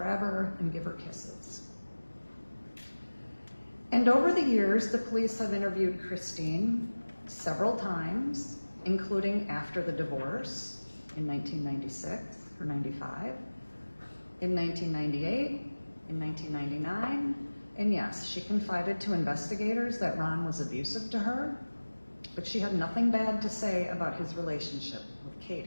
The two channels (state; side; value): inverted; both; correlation -1.00